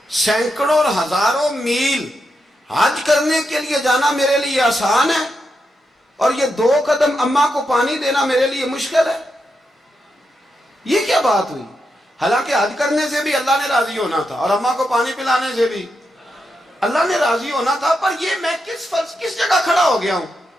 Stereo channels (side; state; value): both; normal; correlation 0.85